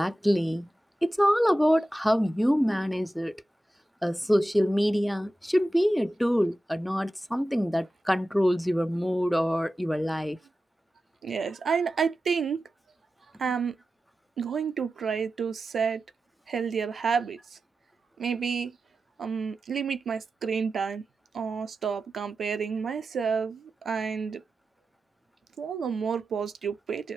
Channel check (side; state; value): both; normal; correlation 0.93